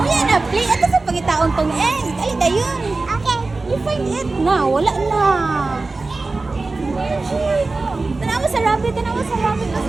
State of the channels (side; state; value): left; quieter; 3.5 dB